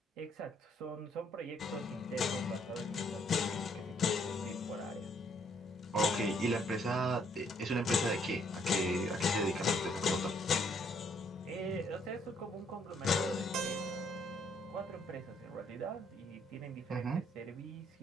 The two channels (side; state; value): both; normal; correlation 0.68